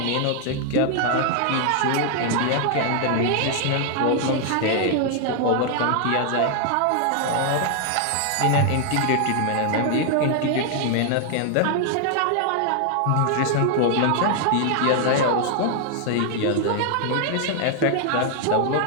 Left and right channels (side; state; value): both; different; correlation 0.00